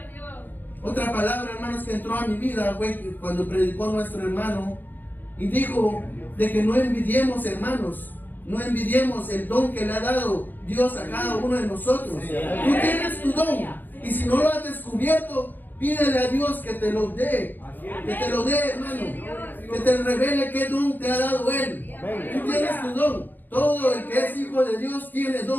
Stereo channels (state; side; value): late; right; 0.088 ms